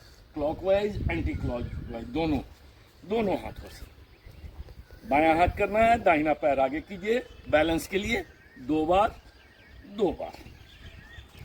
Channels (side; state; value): both; identical; correlation 1.00